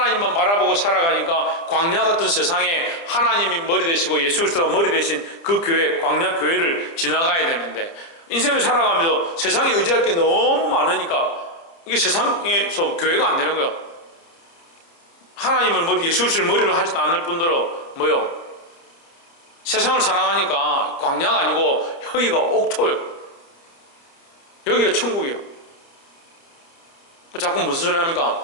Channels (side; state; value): right; late; 30 ms